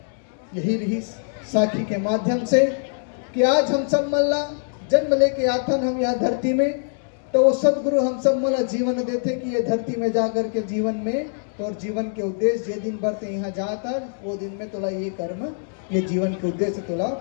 यही रही साखी के माध्यम से कि आज हम सब मल्ला जन्म लेके आथन हम यहाँ धरती में, तो वो सदगुरु हम सब मला जीवन देते कि ये धरती में जाकर के जीवन में तो और जीवन के उद्देश्य जे दिन बढ़ते यहाँ जाता वो दिन में तोला ये कर्म ये जीवन के उद्देश्य तोला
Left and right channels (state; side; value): silent; right; digital silence